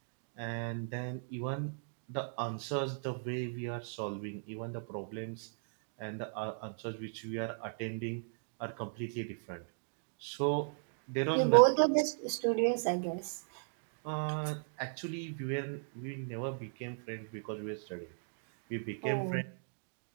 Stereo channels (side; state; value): left; silent; digital silence